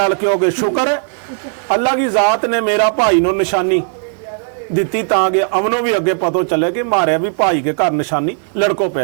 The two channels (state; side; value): silent; left; digital silence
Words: क्योंकि शुक्र है अल्लाह की जात ने मेरा भाई नो निशानी दिती ताकि अमनो भी अगे पतो चले कि मारे भी भाई के घर निशानी लड़को